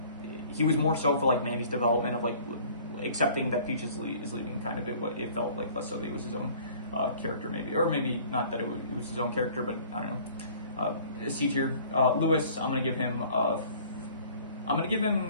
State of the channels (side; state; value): both; inverted; correlation -0.52